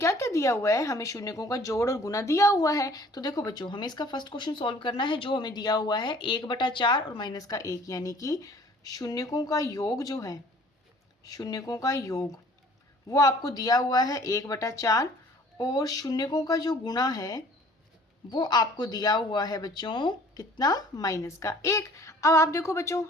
क्या दिया हुआ है, हमें शून्यकों का जोड़ और गुना दिया हुआ है। तो देखो बच्चों, हमें इसका फर्स्ट क्वेश्चन सॉल्व करना है। जो हमें दिया हुआ है 1/4 और माइनस का 1, यानी कि शून्यकों का योग जो है, शून्यकों का योग वो आपको दिया हुआ है 1/4 और शून्यकों का जो गुणा है वो आपको दिया हुआ है बच्चों कितना, माइनस का 1। अब आप देखो बच्चों,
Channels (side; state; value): both; normal; correlation 0.53